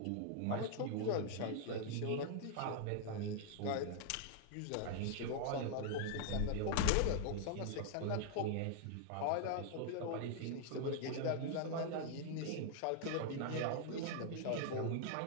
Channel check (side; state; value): both; different; correlation 0.00